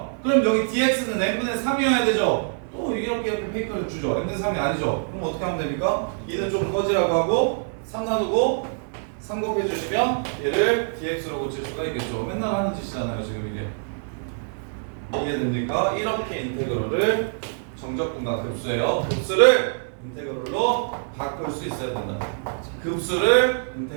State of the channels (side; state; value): left; silent; digital silence